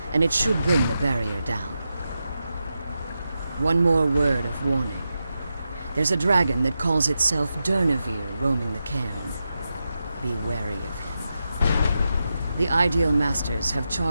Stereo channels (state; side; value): inverted; both; correlation -0.89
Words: and it should bring the barrier down. One more word of warning. There's a dragon that calls itself Durnevere roaming the cairn. Be wary of him. The Ideal Masters have